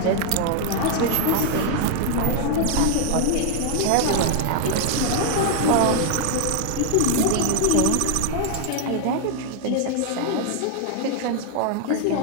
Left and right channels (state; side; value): different; both; correlation 0.00